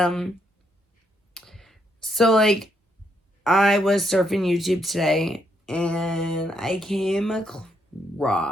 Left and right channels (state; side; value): normal; both; correlation 0.76